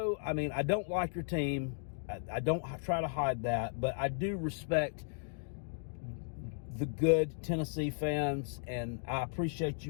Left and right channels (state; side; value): silent; right; digital silence